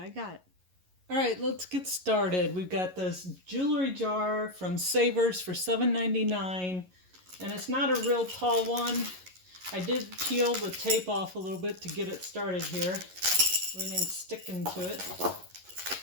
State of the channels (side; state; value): left; late; 11 ms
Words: got. Alright, let's get started. We've got this jewelry jar from Savers for $7.99, and it's not a real tall one. I did peel the tape off a little bit to get it started here. Everything's sticking to it.